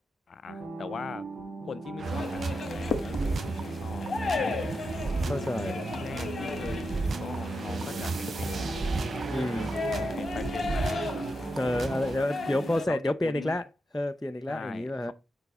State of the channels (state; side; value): normal; both; correlation 0.87